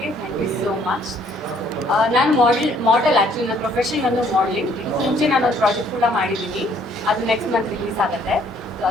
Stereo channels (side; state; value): both; normal; correlation 0.63